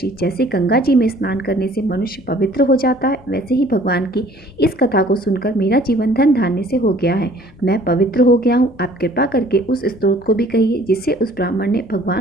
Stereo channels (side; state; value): both; normal; correlation 0.54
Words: जैसे गंगा जी में स्नान करने से मनुष्य पवित्र हो जाता है, वैसे ही भगवान की इस कथा को सुनकर मेरा जीवन धन धान्य से हो गया है। मैं पवित्र हो गया हूँ। आप कृपा करके उस स्तोत्र को भी कहिए जिससे उस ब्राह्मण ने